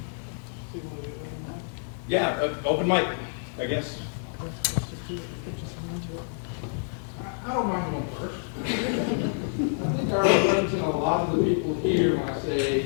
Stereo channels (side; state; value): right; silent; digital silence